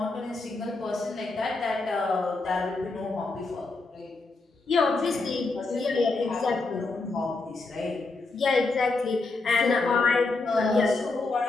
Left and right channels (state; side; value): quieter; right; 3.6 dB